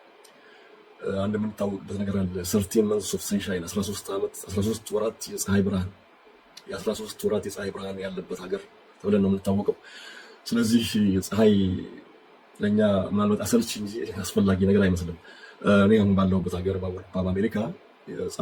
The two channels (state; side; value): identical; both; correlation 1.00